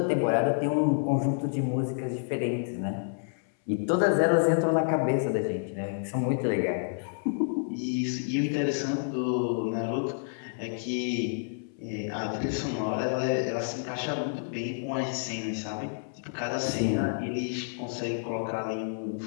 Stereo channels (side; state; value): right; silent; 58 dB below the other